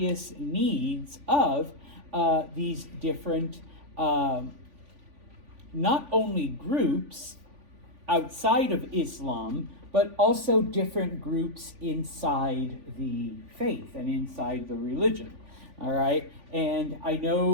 needs of these different not only groups outside of Islam, but also different groups inside the faith and inside the religion. All right, and I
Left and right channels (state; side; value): late; left; 3.5 ms